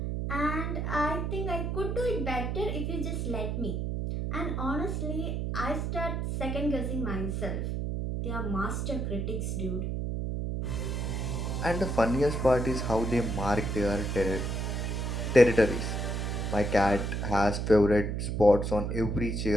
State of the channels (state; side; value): noise; right; hum, 1 dB below the sound